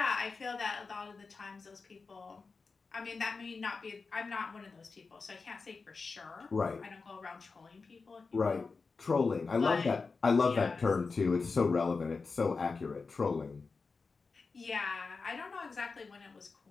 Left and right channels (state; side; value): quieter; right; 4.4 dB